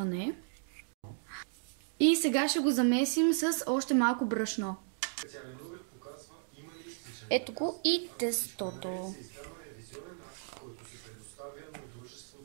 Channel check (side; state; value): left; silent; digital silence